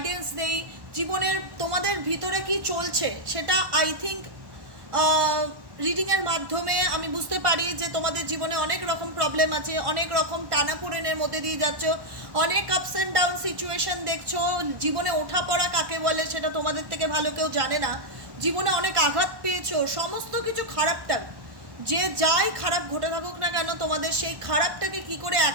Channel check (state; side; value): late; left; 1.1 ms